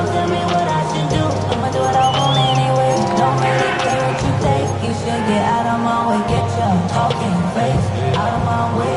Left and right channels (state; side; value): identical; both; correlation 1.00